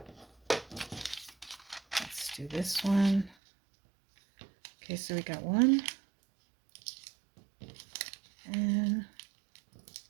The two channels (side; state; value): left; drops out; at 3.4 s